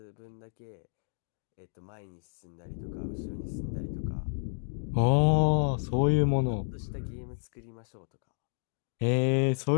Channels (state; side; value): silent; right; digital silence